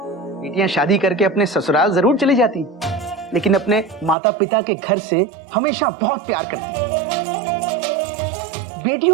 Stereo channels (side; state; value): left; drops out; at 4.2 s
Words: बेटियां शादी करके अपने ससुराल जरूर चली जाती, लेकिन अपने माता पिता के घर से हमेशा बहुत प्यार करती।